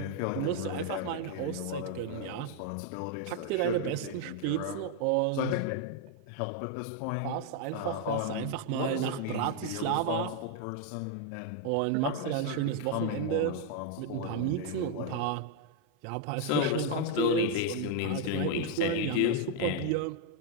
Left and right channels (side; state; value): both; different; correlation 0.00